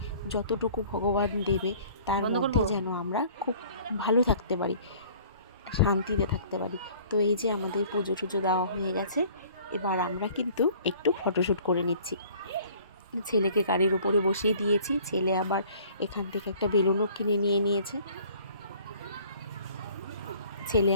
যতটুকু ভগবান দেবে তার মধ্যে যেন আমরা খুব ভালো থাকতে পারি, শান্তিতে থাকতে পারি। তো এই যে আমাদের পুজো টুজো দেওয়া হয়ে গেছে, এবার আমরা কিন্তু একটু ফটোশ্যুট করে নিচ্ছি। ছেলেকে গাড়ির উপরে বসিয়ে দিয়েছি, ছেলে আবার এখান থেকে একটা বেলুনও কিনে নিয়ে নিয়েছে। ছেলে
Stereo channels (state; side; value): inverted; both; correlation -0.52